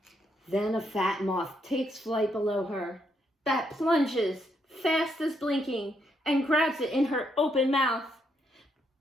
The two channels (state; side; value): normal; both; correlation 0.76